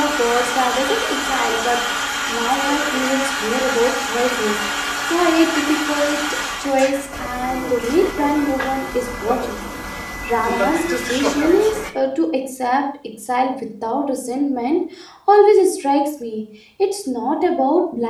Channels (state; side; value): identical; both; correlation 1.00